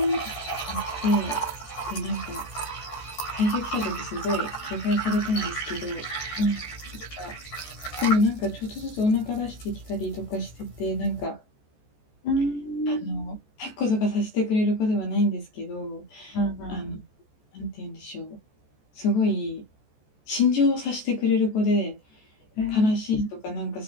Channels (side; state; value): right; late; 14 ms